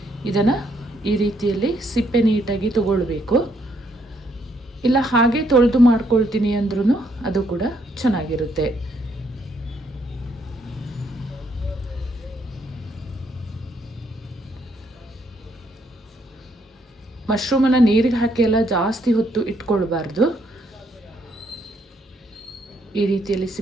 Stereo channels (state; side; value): normal; both; correlation 0.72